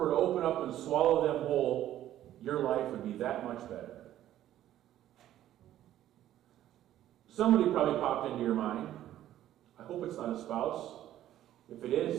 to open up and swallow them whole, your life would be that much better. Somebody probably popped into your mind. I hope it's not a spouse. If it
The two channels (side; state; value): left; quieter; 12.6 dB